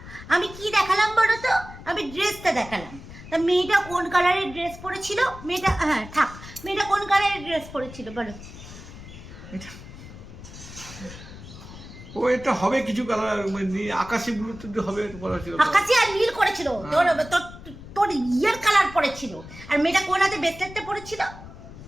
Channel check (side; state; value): left; noise; rumble, 15 dB below the sound